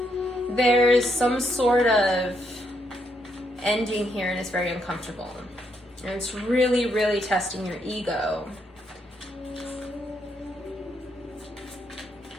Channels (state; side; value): normal; both; correlation 0.76